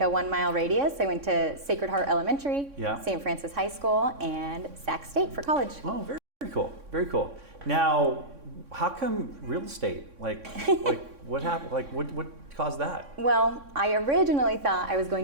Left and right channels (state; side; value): late; left; 3.6 ms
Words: a 1 mile radius. I went to Sacred Heart Elementary, St. Francis High School, and Sac State for college. Oh, very cool, very cool. Now, how come real estate? Like what happened? Like what caused that? Well, I originally thought I was